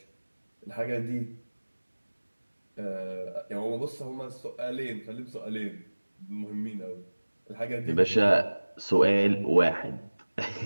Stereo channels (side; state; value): both; inverted; correlation -1.00